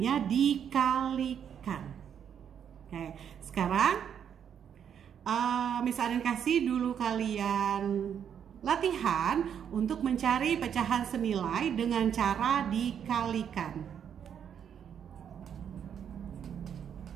dikalikan. Oke, sekarang Miss Arin kasih dulu kalian latihan untuk mencari pecahan senilai dengan cara dikalikan.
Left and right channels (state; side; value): quieter; left; 8.4 dB